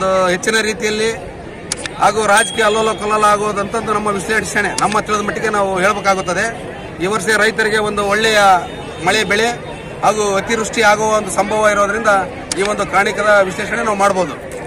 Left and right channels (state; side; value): identical; both; correlation 1.00